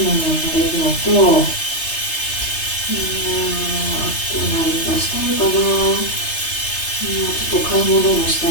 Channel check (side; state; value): right; late; 3.3 ms